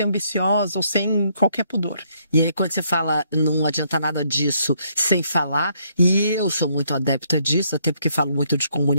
ambiciosa ou sem qualquer pudor. E aí, quando você fala não adianta nada disso sem falar, e eu sou muito adepta disso, até porque falo muito de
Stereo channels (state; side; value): inverted; both; correlation -0.70